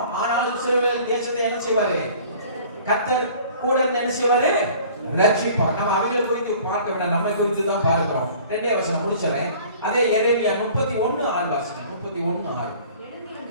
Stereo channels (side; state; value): both; inverted; correlation -0.49